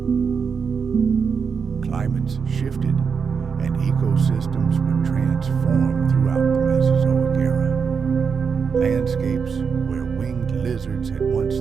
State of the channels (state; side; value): quieter; left; 6.0 dB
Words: Climates shifted and ecosystems were transformed throughout the Mesozoic era. Landscapes where winged lizards had once